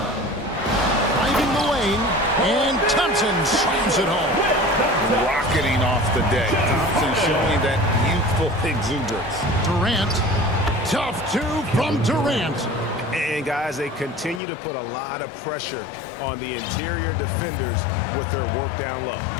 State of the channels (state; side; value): drops out; right; at 14.4 s